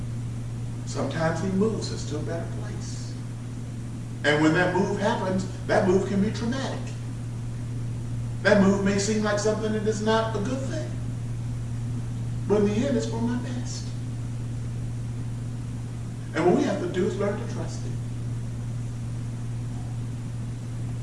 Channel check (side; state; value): both; identical; correlation 1.00